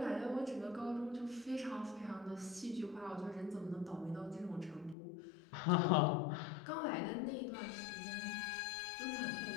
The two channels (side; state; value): right; drops out; at 5.0 s